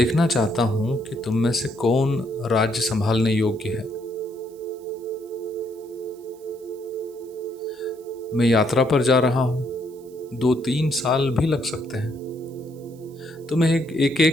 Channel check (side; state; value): right; noise; hiss, 28 dB below the sound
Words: चाहता हूं कि तुम में से कौन राज्य संभालने योग्य है। मैं यात्रा पर जा रहा हूं, 2-3 साल भी लग सकते हैं। तो मैं एक